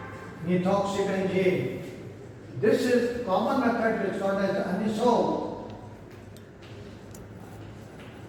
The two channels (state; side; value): identical; both; correlation 1.00